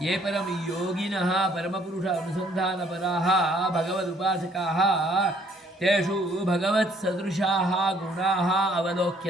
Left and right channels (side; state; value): both; normal; correlation 0.63